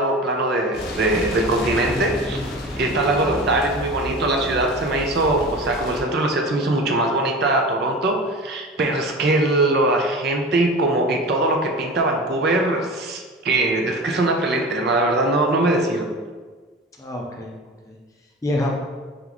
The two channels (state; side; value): normal; both; correlation 0.33